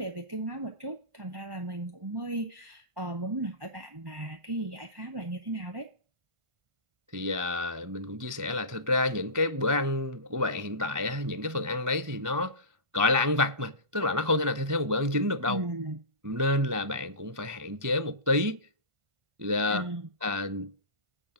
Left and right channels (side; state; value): left; late; 1.5 ms